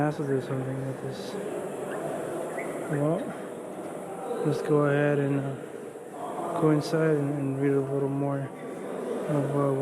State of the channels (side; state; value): both; identical; correlation 1.00